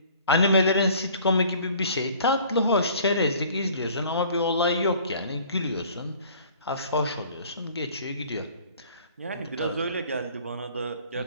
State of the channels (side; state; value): both; inverted; correlation -0.52